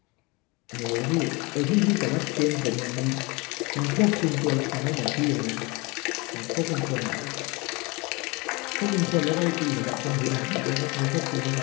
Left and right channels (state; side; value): quieter; right; 26.6 dB